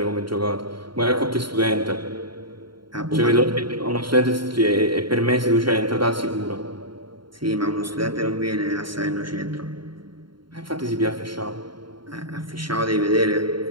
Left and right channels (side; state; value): left; late; 0.73 ms